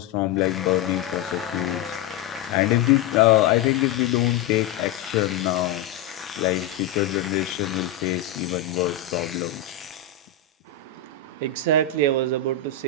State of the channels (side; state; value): right; quieter; 7.2 dB